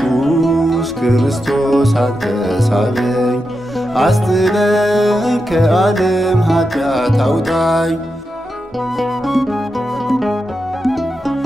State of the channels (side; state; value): both; normal; correlation 0.88